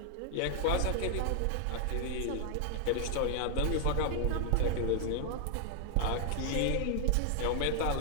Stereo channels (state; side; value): different; both; correlation 0.00